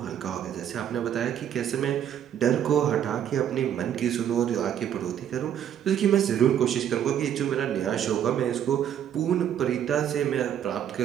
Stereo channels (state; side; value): quieter; left; 9.8 dB